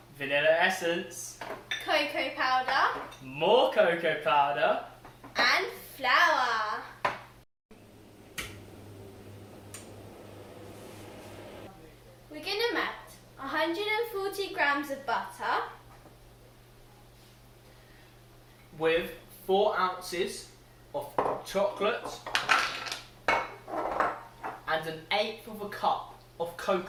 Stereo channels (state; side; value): identical; both; correlation 1.00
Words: vanilla essence, cocoa powder more cocoa powder, and flour. We're going to melt 140 grams of butter with 4 ounces of chocolate and 1/8 of a cup of